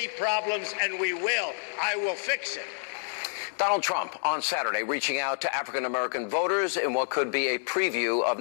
problems, and we will. I will fix it. Donald Trump on Saturday reaching out to African-American voters in what could be a preview of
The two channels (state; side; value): silent; right; digital silence